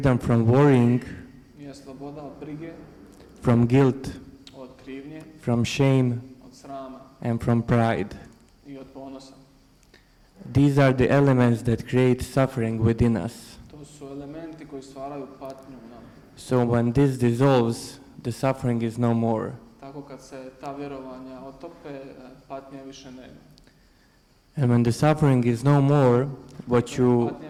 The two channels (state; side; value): identical; both; correlation 1.00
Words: from worrying, je sloboda od brige, from guilt, od krivnje, from shame, od srama and from pride. i od ponosa. These are the elements that create suffering within us. To su elementi koji stvaraju patnju u nama. So when this dissolves, the suffering is no more. Tako kad se ta vjerovanja otope, patnje više nema. And when the suffering is no more, Patnje